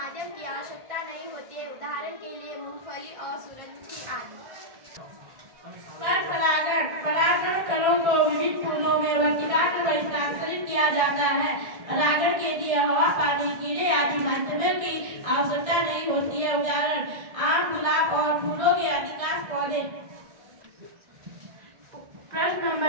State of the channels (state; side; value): late; left; 1.6 ms